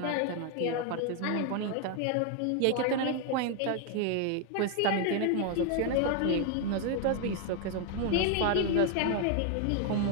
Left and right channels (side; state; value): both; different; correlation 0.01